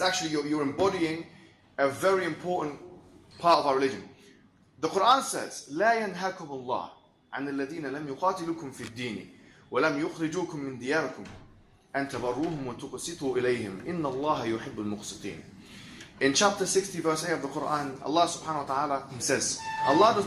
you're embodying a very important part of our religion. The Quran says, لا ينهاكم الله عن الذين لم يقاتلوكم في الدين ولم يخرجوكم من دياركم أن تبروهم وتقسطوا إليهم إن الله يحب المقسطين. In chapter 60 verse 8 of the Quran, Allah subhanahu wa ta'ala, He says, Allah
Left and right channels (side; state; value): both; identical; correlation 1.00